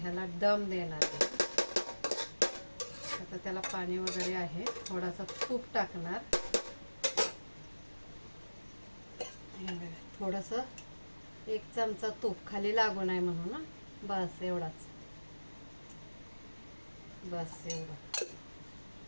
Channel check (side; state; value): both; inverted; correlation -1.00